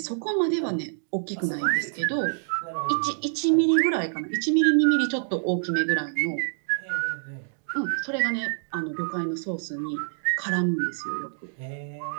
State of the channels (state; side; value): silent; left; digital silence